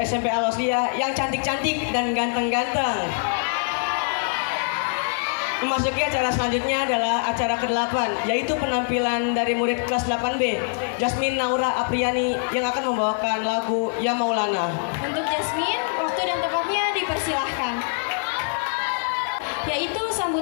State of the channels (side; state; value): right; silent; 63 dB below the other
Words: SMP Al-Wasliyah yang cantik-cantik dan ganteng-ganteng, memasuki acara selanjutnya adalah acara ke-8, yaitu penampilan dari murid kelas 8B, Jasmine Naura Apriani, yang akan membawakan lagu Ya Maulana. Untuk Jasmine, waktu dan tempatnya dipersilahkan. Yaitu